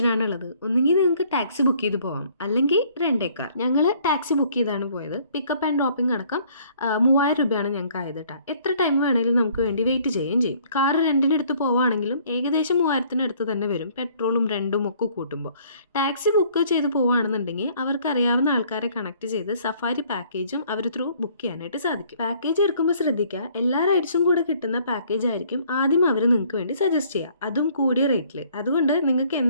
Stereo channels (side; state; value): both; inverted; correlation -0.60